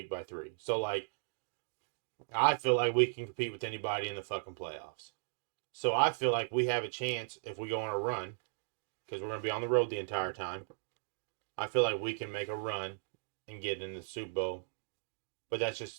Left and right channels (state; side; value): silent; left; digital silence